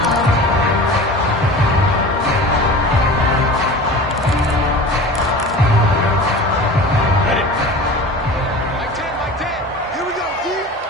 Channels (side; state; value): both; normal; correlation 0.37